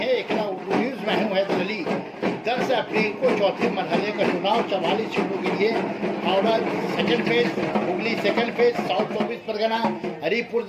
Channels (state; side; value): identical; both; correlation 1.00